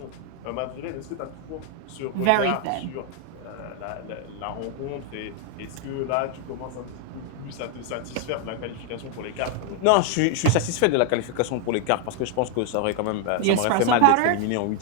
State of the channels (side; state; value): both; different; correlation 0.00